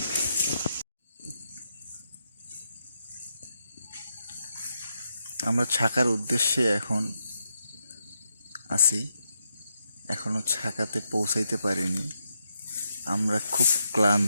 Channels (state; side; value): inverted; both; correlation -0.82